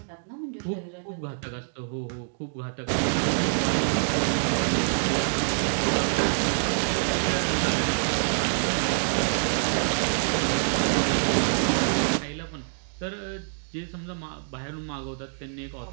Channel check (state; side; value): silent; left; digital silence